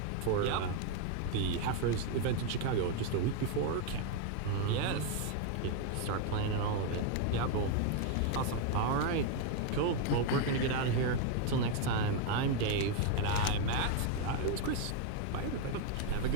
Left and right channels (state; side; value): different; both; correlation 0.01